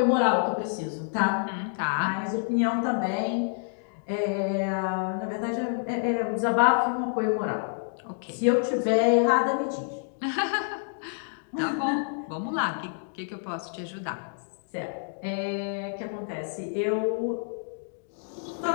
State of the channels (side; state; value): right; silent; digital silence